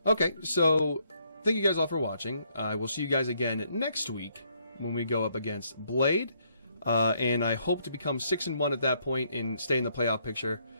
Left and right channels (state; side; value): inverted; both; correlation -0.71